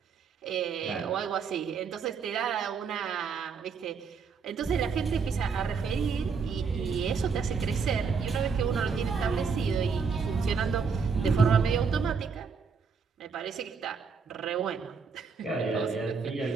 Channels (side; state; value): left; quieter; 5.5 dB